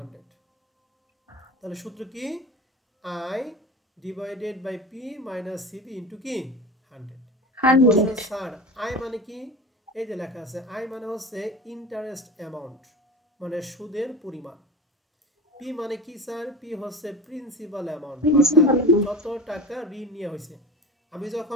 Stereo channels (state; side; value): normal; both; correlation 0.31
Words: তাহলে সূত্র কি, I divided by P minus CB into কি 100। স্যার আই মানে কি, এই যে লেখা আছে আই মানে হচ্ছে ইন্টারেস্ট অ্যামাউন্ট, মানে সুদের পরিমাণ। পি মানে কি স্যার, পি হচ্ছে প্রিন্সিপাল অ্যামাউন্ট, অর্থাৎ যত টাকা ঋণ নিয়ে হয়েছে। আমি